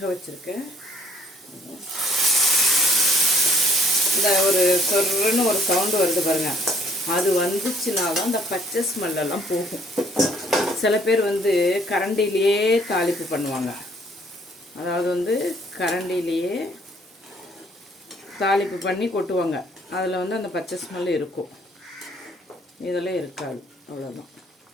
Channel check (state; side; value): normal; both; correlation 0.61